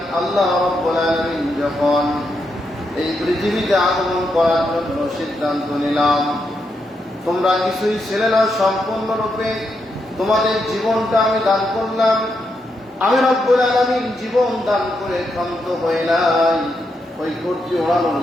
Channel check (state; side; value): normal; both; correlation 0.82